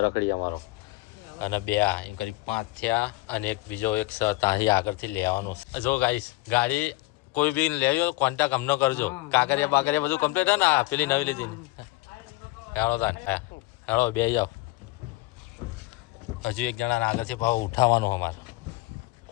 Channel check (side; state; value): right; quieter; 20.2 dB